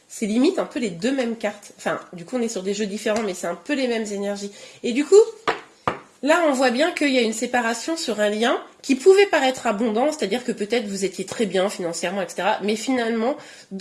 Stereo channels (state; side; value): identical; both; correlation 1.00